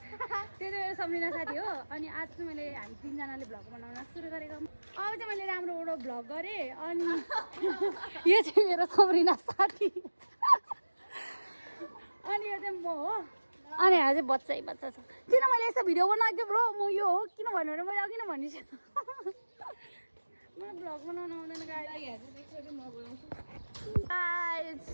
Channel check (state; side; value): inverted; both; correlation -1.00